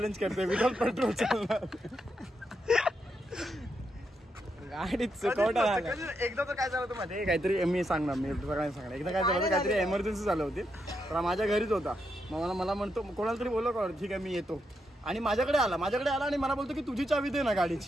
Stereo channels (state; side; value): normal; both; correlation 0.82